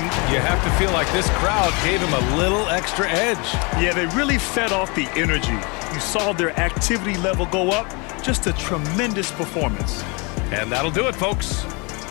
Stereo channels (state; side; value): quieter; right; 29.9 dB